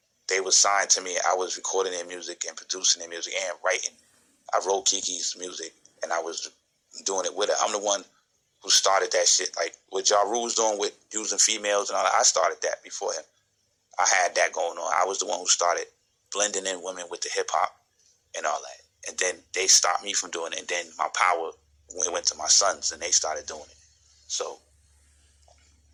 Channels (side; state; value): both; identical; correlation 1.00